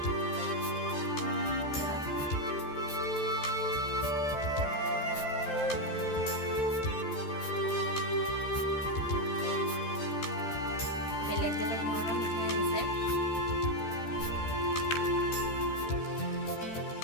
বেলেগ বেলেগ ধৰণৰ মিঠাই দিছে।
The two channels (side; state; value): right; late; 13 ms